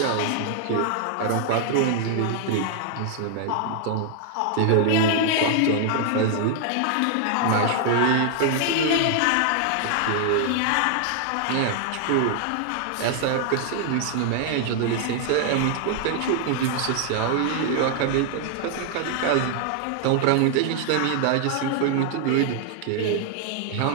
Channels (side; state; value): both; different; correlation 0.00